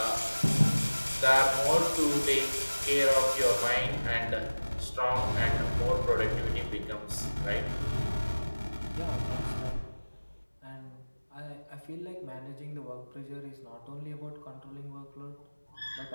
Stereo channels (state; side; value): inverted; both; correlation -1.00